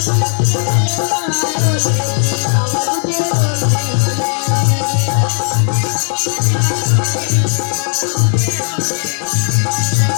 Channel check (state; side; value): silent; right; digital silence